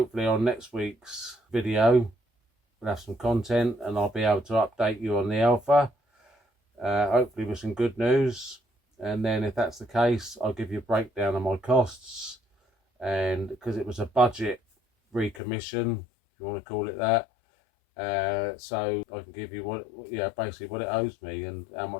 on next week's video we'll have some content and I'll be able to update you on the Alpha, hopefully with some good news. And then if that's the case, I'll give you a breakdown of my costs, and because it was a budget recommission, if you want to call it that, so I can give you basically what it owes me and how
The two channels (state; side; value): drops out; right; at 15.4 s